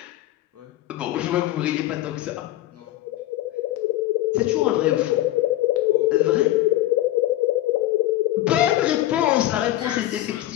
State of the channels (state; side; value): quieter; right; 15.1 dB